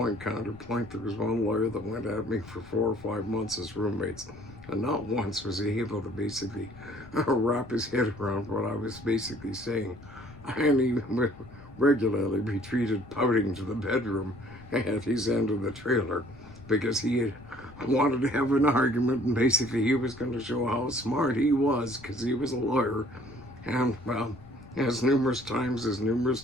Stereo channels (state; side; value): noise; left; rumble, 21 dB below the sound